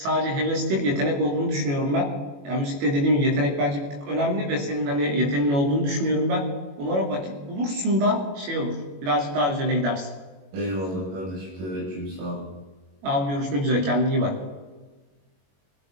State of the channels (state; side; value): late; left; 21 ms